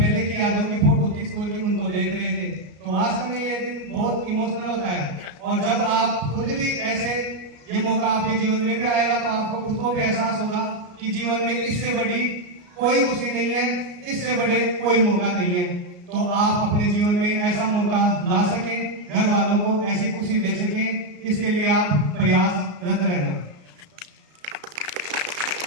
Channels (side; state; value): left; late; 33 ms